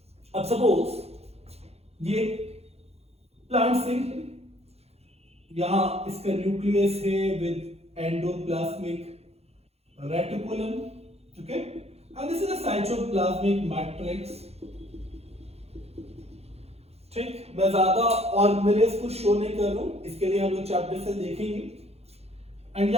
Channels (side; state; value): left; late; 0.30 ms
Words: अब सपोज ये प्लांट सेल है, यहां इसका न्यूक्लियस है with endoplasmic reticulum, okay, and this is a cytoplasmic matrix। ठीक, मैं ज्यादा ऑर्गेनेल्स को शो नहीं कर रहा हूं, इसके लिए हम लोग चैप्टर से देखेंगे। एंड